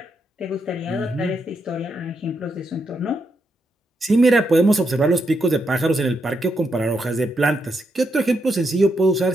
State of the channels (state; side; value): normal; both; correlation 0.81